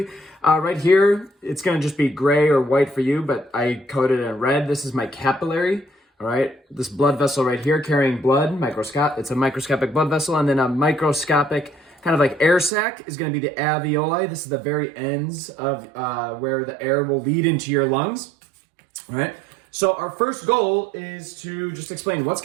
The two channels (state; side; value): drops out; left; at 12.7 s